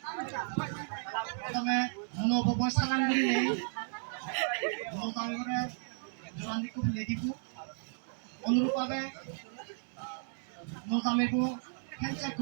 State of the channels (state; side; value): silent; left; digital silence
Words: প্রথমে নবব সালাম করিলে নতামে করে জোরান দিকু ফেলে দিব অনুরূপভাবে নতামেকু হ্যান্ডশেক